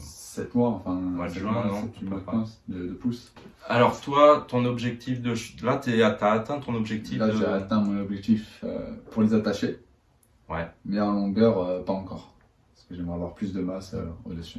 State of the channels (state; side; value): identical; both; correlation 1.00